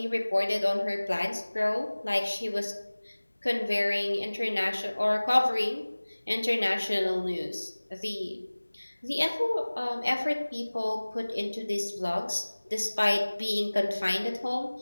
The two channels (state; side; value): inverted; both; correlation -1.00